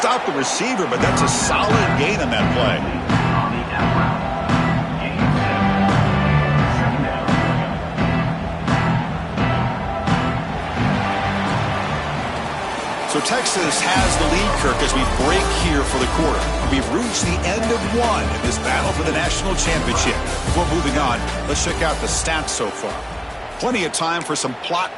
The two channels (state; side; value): identical; both; correlation 1.00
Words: the receiver, but that's a solid gain on that play. So Texas has the lead, Kirk, as we break here for the quarter. We've reached the end of one in this battle for the national championship. Before moving on, let's check out the stats so far. Plenty of time for some plot